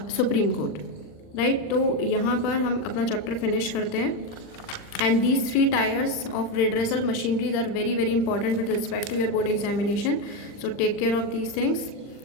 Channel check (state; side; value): late; right; 39 ms